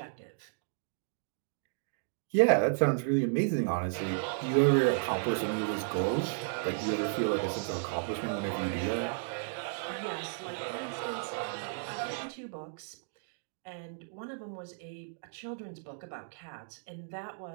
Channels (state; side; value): silent; left; digital silence